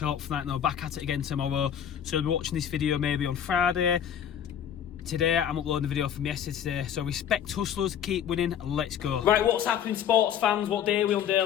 out for that. And I'll back at it again tomorrow. So I'll be watching this video maybe on Friday. Today I'm uploading the video from yesterday, so respect hustlers, keep winning, let's go. Right, what's happening, sports fans? What day are we on,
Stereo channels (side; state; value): right; quieter; 9.2 dB